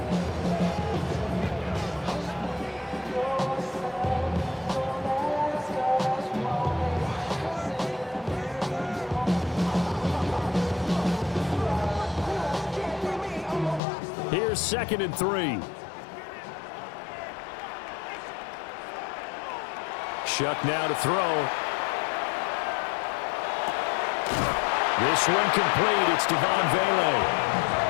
Here's 2nd and 3. Shuck now to throw. This one complete. It's Devon Vele.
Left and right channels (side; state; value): right; drops out; at 13.8 s